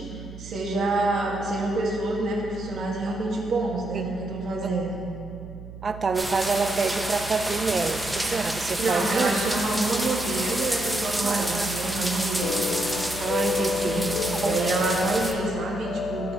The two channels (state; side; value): noise; right; hum, 14 dB below the sound